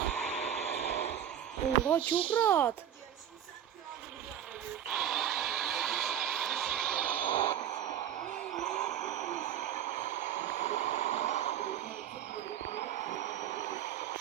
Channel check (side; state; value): left; quieter; 10.1 dB